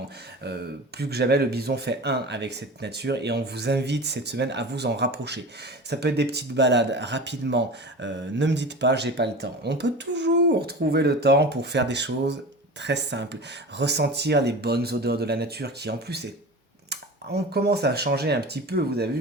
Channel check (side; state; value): both; normal; correlation 0.33